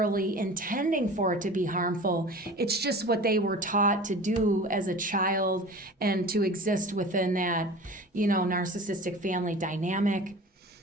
intending for it to be harmful. It's just what they were taught to do as a child and to exist within that, narcissistic family dynamic.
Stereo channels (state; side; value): normal; both; correlation 0.38